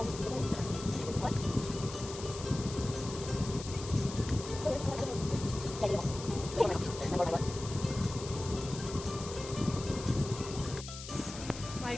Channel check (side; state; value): left; noise; hiss, 11 dB below the sound